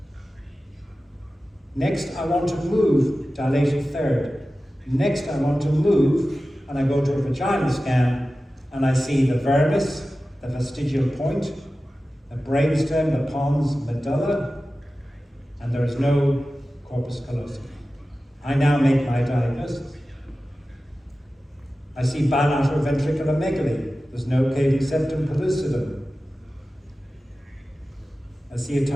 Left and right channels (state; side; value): normal; both; correlation 0.95